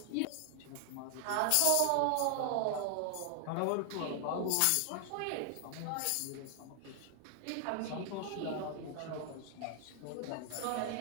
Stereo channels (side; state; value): both; different; correlation 0.00